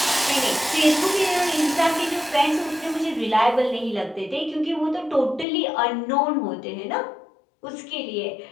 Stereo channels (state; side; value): drops out; right; at 5.5 s